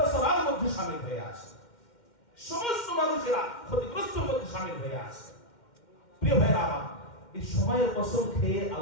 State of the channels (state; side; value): late; right; 2.1 ms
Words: মধ্যে শামিল হয়ে আছে, সমস্ত মানুষেরা ক্ষতিগ্রস্তের মধ্যে শামিল হয়ে আছে। প্রিয় ভাইরা আমার, এই সময়ের কসম খেয়ে